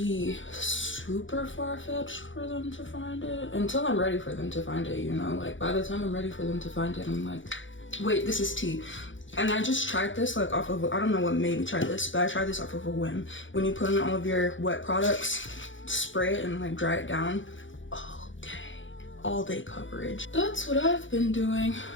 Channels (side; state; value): right; late; 0.56 ms